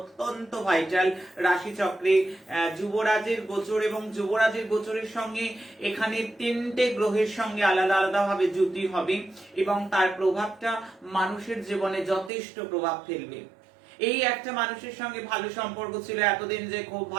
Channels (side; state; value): left; drops out; at 12.3 s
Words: ভাইটাল রাশি চক্রে যুবরাজের গোচর। এবং যুবরাজের গোচরের সঙ্গে এখানে তিনটে গ্রহের সঙ্গে আলাদা আলাদা ভাবে যুতি হবে এবং তার প্রভাবটা মানুষের জীবনে যথেষ্ট প্রভাব ফেলবে। এই একটা মানুষের সঙ্গে ভালো সম্পর্ক ছিল এতদিন, যে খুব